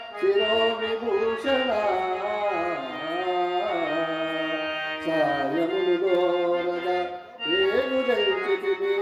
శిరో విభూషణ సాయమును దోరగ రేగుదంచితిమి.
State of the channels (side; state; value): both; identical; correlation 1.00